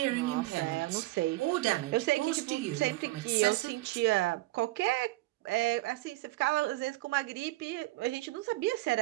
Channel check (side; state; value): left; quieter; 18.7 dB